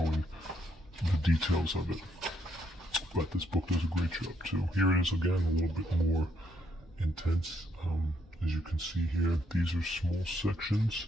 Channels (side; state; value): both; normal; correlation 0.74